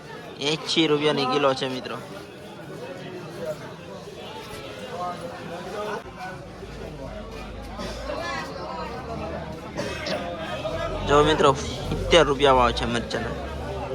80 રૂપિયાની કિલો છે મિત્રો. જો મિત્રો 70 રૂપિયા ભાવ છે મરચાના,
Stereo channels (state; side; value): identical; both; correlation 1.00